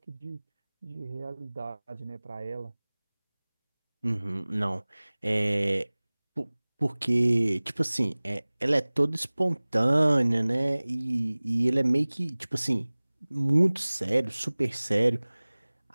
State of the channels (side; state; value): both; inverted; correlation -1.00